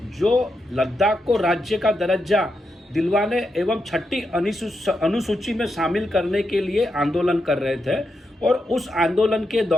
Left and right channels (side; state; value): both; normal; correlation 0.85